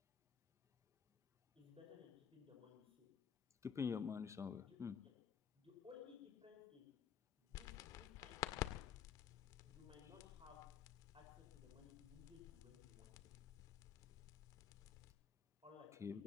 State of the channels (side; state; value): right; quieter; 8.0 dB